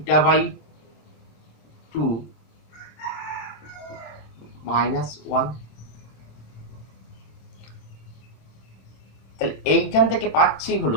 by 2 minus 1। তাহলে এইখান থেকে পাচ্ছি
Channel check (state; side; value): late; right; 26 ms